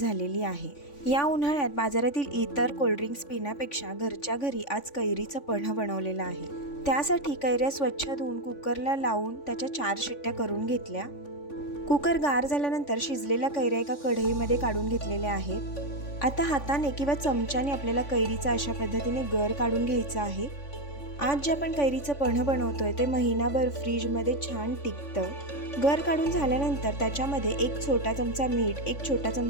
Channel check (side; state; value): right; late; 3.5 ms